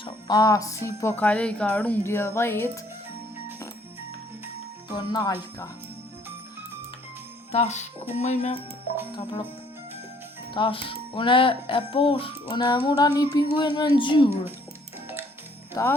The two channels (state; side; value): normal; both; correlation 0.62